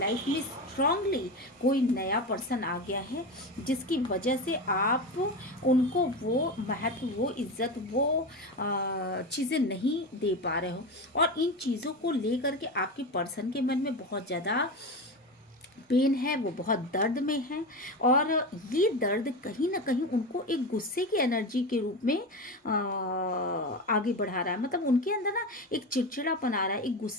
में स्ट्रांगली कोई नया पर्सन आ गया है जिसकी वजह से आप उनको वो महत्व, वो इज्जत, वो चीज़ें नहीं दे पा रहे हो। और इन चीज़ों को लेकर के आपके पर्सन के मन में बहुत ज़्यादा पेन है, वो बहुत दर्द में है, और ये दर्द कहीं ना कहीं उनको एक गुस्से की एनर्जी के रूप में आगे बढ़ा रहा है। मतलब उनके अंदर ना एक चिड़चिड़ापन आ रहा है, एक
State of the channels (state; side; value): normal; both; correlation 0.22